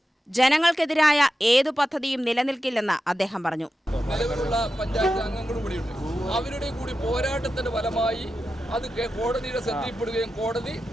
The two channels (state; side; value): normal; both; correlation 0.91